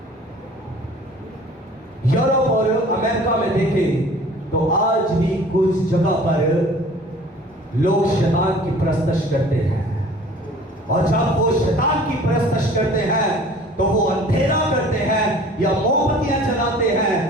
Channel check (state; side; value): normal; both; correlation 0.48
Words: यूरोप और अमेरिका में देखें तो आज भी कुछ जगह पर लोग शैतान की परस्तश करते हैं और जब वो शैतान की परस्तश करते हैं तो वो अंधेरा करते हैं या मोमबत्तियां जलाते